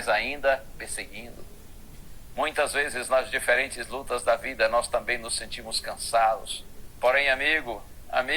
ainda perseguindo. Muitas vezes nas diferentes lutas da vida nós também nos sentimos cansados. Porém, amigo,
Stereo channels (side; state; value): both; identical; correlation 1.00